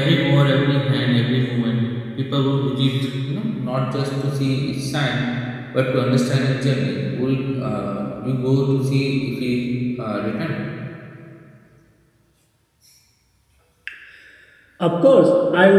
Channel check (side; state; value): both; identical; correlation 1.00